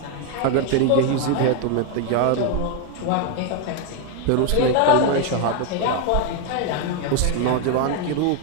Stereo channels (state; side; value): different; both; correlation 0.01